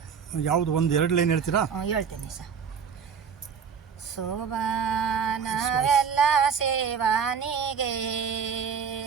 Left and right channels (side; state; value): left; quieter; 6.9 dB